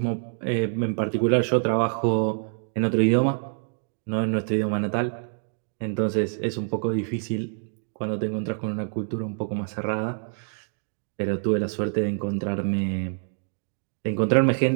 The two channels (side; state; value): left; silent; digital silence